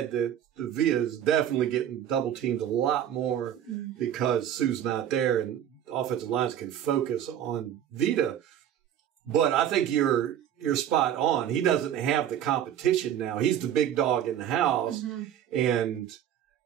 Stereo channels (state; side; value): quieter; left; 10.4 dB